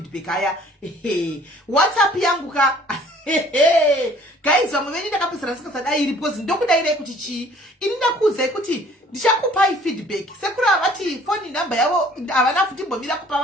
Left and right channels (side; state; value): both; normal; correlation 0.55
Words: aya. WhatsApp yangu ka guys vamwe venyu ndakapesera ndisikasadai iri because ndokudairai kuti chii. Ini ndakuudzai kuti ndichakupai feedback sekuru avati phone number yavo havana kutimbomira kupa